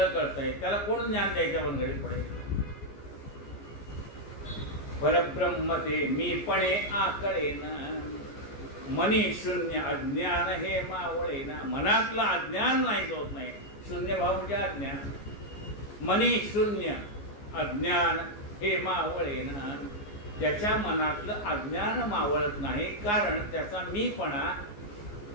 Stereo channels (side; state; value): right; late; 14 ms